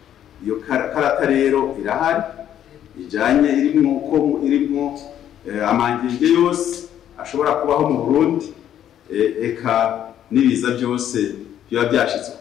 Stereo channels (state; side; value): quieter; right; 10.6 dB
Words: Iyo karata rero irahari ijanye irimwo amangenge yose ashobora kubaho mu Burundi, eka n'ibiza byose biba byashitse